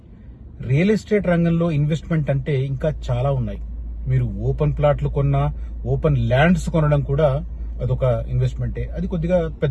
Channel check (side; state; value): both; identical; correlation 1.00